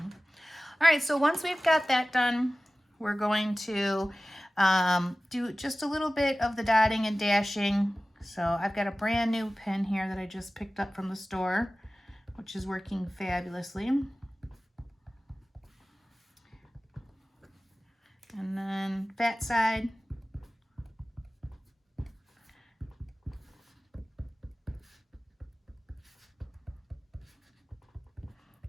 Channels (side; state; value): both; normal; correlation 0.97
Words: All right, so once we've got that done, we're going to do just a little bit of the dotting and dashing. So I've got a brand new pen here that I just picked up from the store, which is working fabulously. And then fat side.